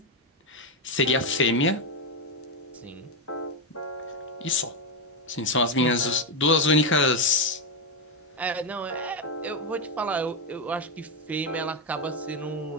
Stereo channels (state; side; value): normal; both; correlation 0.06